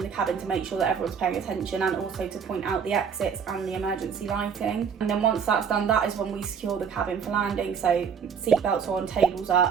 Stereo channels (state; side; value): quieter; left; 6.8 dB